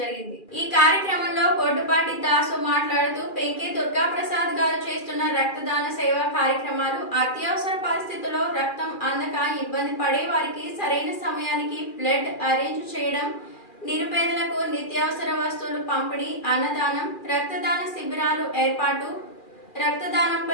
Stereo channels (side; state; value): right; late; 2.4 ms